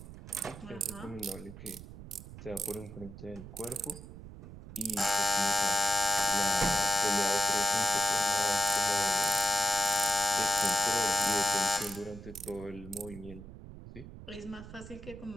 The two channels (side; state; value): right; noise; rumble, 14 dB below the sound